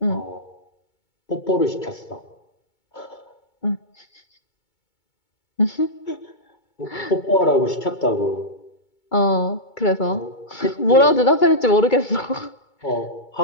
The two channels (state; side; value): late; right; 2.2 ms